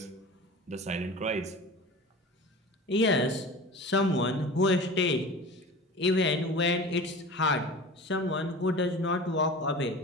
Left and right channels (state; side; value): normal; both; correlation 0.36